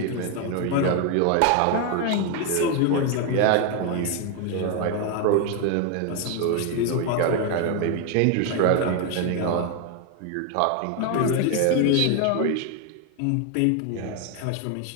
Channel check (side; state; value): both; different; correlation 0.01